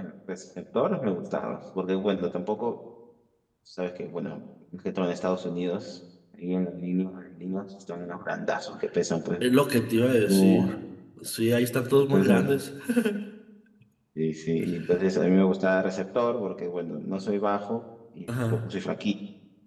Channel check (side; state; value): both; identical; correlation 1.00